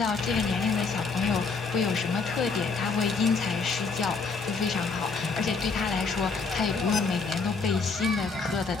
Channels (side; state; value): right; quieter; 4.6 dB